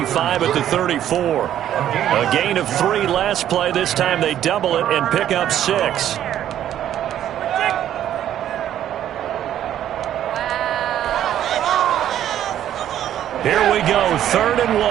at the 34. A gain of 3 last play. This time they double it and pick up 6. Here we go, 3rd and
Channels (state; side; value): quieter; left; 11.2 dB